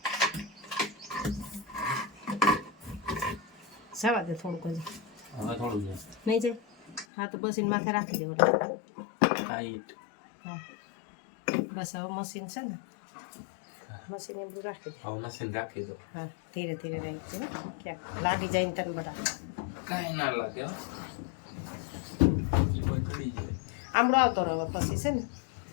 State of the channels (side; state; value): right; drops out; at 7.1 s